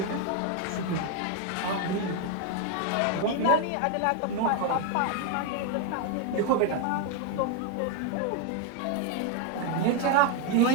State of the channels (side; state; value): both; different; correlation 0.01